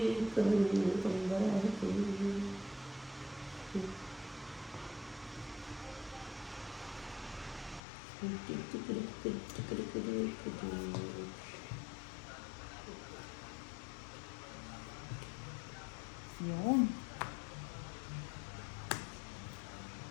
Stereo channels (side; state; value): right; drops out; at 7.8 s